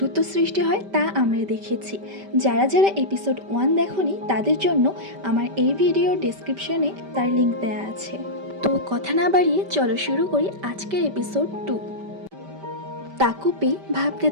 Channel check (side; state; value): left; late; 5.1 ms